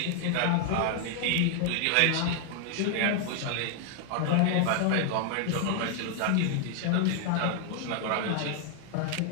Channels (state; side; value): different; both; correlation 0.00